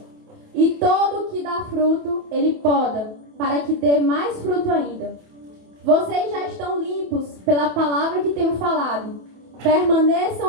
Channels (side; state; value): left; late; 28 ms